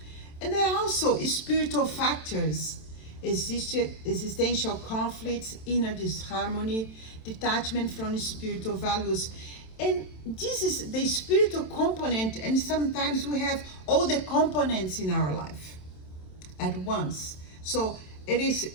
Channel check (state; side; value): late; right; 27 ms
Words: And there are also spiritual factors, existential conflicts, inner disharmony, detachment from spiritual values. And this is the spiritual component, and sometimes we have all the components in our life at once. So we